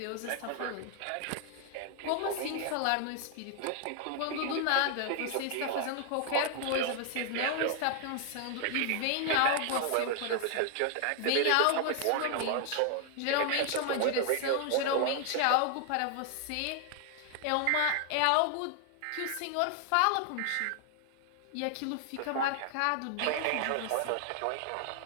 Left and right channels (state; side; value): different; both; correlation 0.00